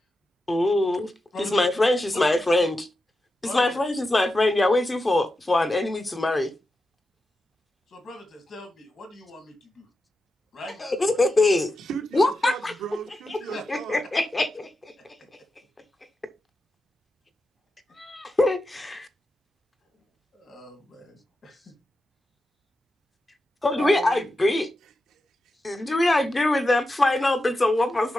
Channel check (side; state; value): both; normal; correlation 0.90